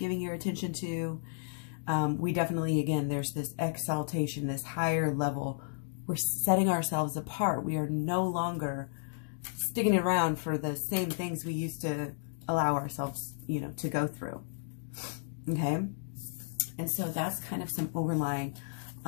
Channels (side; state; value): right; silent; digital silence